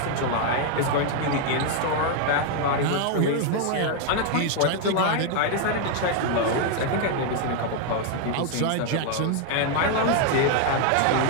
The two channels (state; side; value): different; both; correlation 0.00